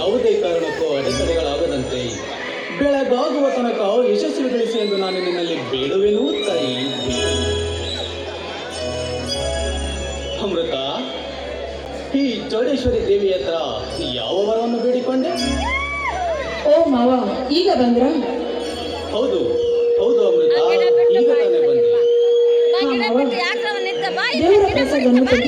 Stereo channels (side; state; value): both; identical; correlation 1.00